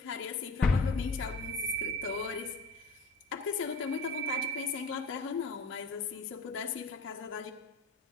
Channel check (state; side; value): quieter; right; 3.0 dB